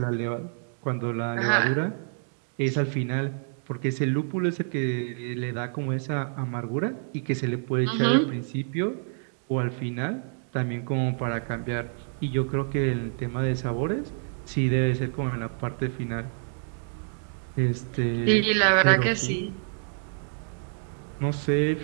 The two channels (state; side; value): silent; left; digital silence